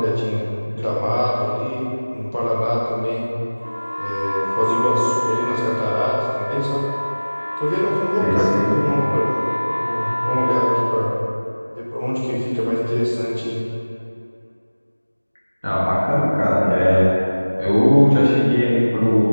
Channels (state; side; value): inverted; both; correlation -1.00